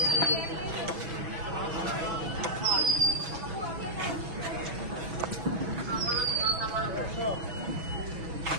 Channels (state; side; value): late; left; 6.1 ms